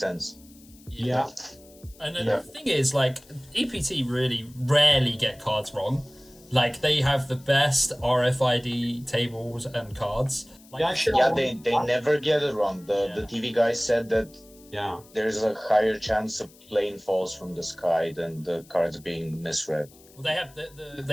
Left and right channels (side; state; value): left; noise; hiss, 25 dB below the sound